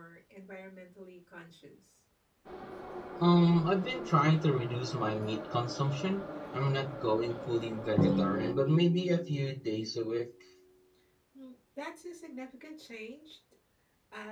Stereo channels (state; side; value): identical; both; correlation 1.00